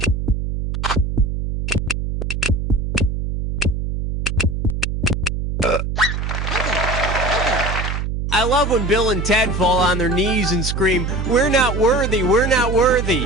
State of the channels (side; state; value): right; noise; hum, 2 dB below the sound